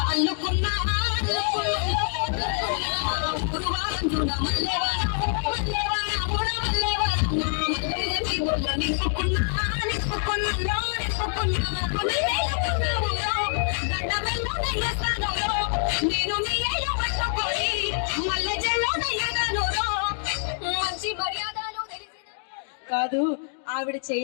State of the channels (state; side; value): silent; right; digital silence